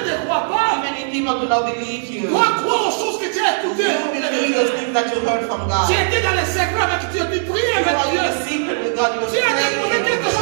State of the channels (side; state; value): left; silent; digital silence